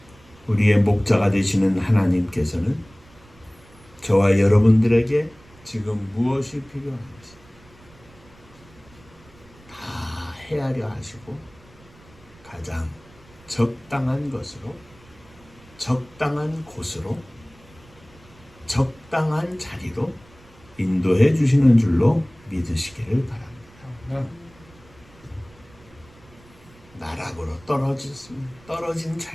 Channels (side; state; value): right; noise; rumble, 26 dB below the sound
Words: 우리의 목자가 되시는 하나님께서는 저와 여러분들에게 지금 무엇이 필요한지 다 헤아려 하시고 가장 적당한 것으로, 적당한 곳으로, 적당한 자리로 인도해 주시는 줄로 믿으시기를 바랍니다. 나락으로 떨어진